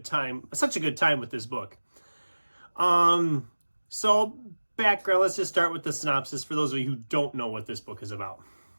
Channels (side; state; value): both; inverted; correlation -1.00